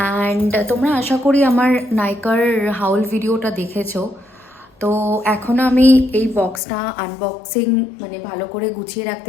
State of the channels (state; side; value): drops out; right; at 6.6 s